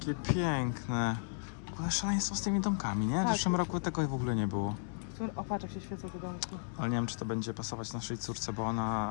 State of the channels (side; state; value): right; silent; digital silence